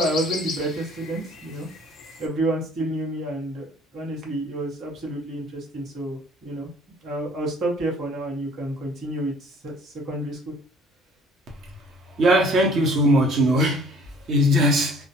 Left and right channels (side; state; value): both; normal; correlation 0.54